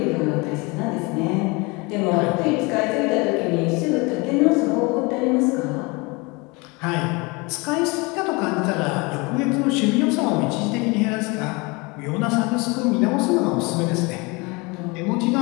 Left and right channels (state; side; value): quieter; right; 26.9 dB